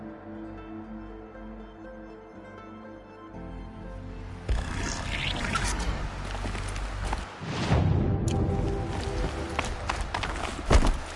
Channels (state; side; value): identical; both; correlation 1.00